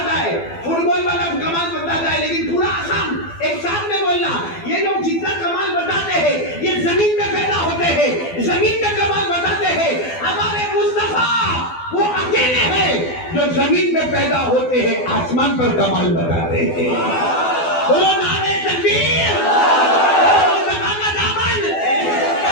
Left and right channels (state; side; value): late; right; 12 ms